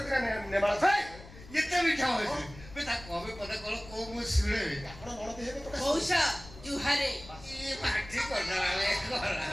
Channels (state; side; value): noise; left; rumble, 18 dB below the sound